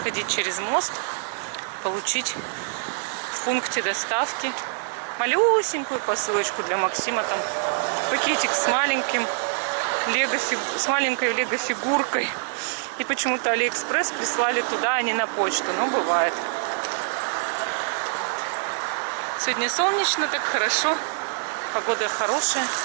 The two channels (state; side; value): silent; left; 62 dB below the other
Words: через мост, получить в пункте доставки малюсенькую посылочку для Максима. Там пакетик с маленькой лего-фигуркой. И почему-то Алиэкспресс прислали туда, а не на почту. Но бывает. Сегодня солнечно, так хорошо. Погода хорошая.